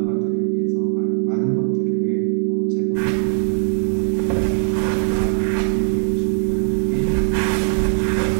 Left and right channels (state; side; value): silent; left; 58 dB below the other